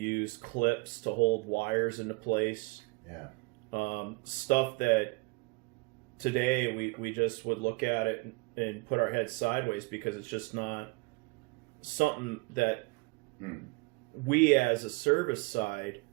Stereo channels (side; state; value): left; quieter; 27.9 dB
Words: clips to hold wires into place. Yeah. Stuff that today we just would look at it and put our heads sideways because it's just not something that we as a service side